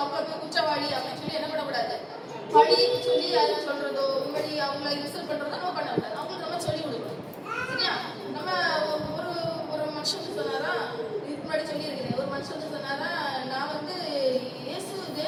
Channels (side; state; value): both; identical; correlation 1.00